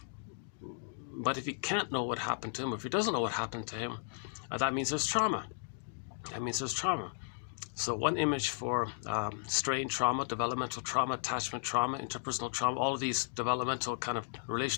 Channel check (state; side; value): silent; right; digital silence